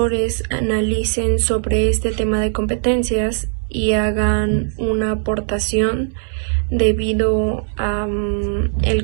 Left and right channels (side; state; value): left; silent; digital silence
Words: analicen sobre este tema de competencias y hagan una aportación debido a el